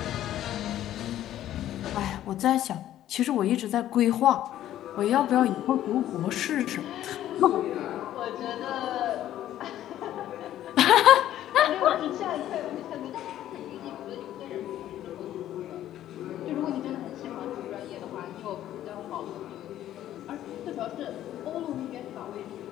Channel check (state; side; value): quieter; right; 12.5 dB